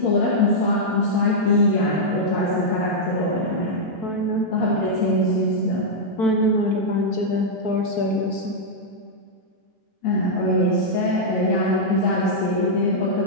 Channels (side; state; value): both; normal; correlation -0.06